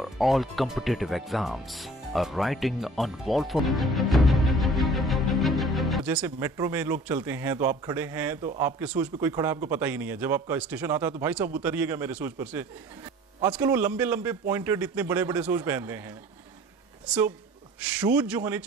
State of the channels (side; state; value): both; normal; correlation 0.47